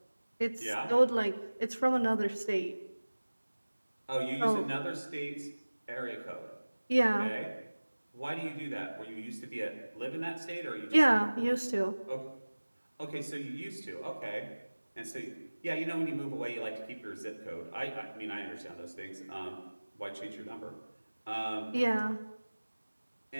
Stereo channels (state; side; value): inverted; both; correlation -1.00